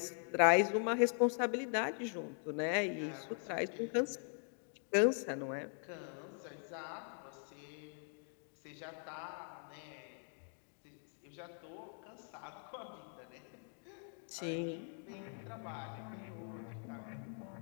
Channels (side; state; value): right; silent; 50 dB below the other